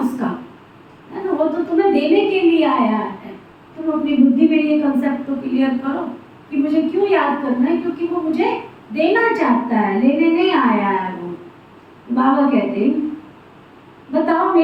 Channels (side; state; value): both; identical; correlation 1.00